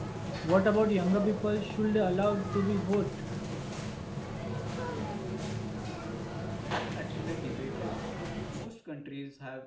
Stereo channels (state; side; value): identical; both; correlation 1.00